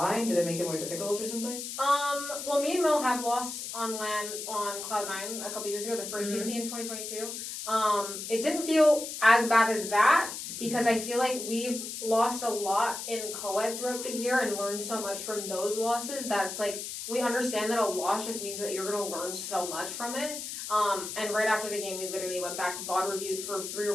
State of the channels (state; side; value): noise; left; hiss, 7 dB below the sound